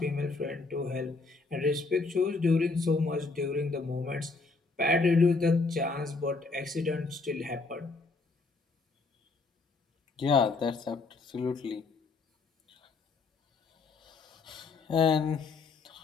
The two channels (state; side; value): quieter; right; 3.9 dB